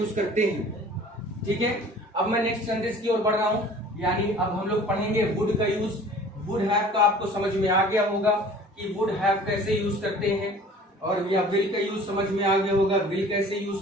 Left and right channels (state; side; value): normal; both; correlation 0.47